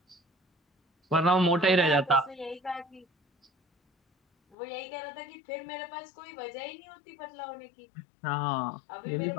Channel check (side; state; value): right; drops out; at 4.5 s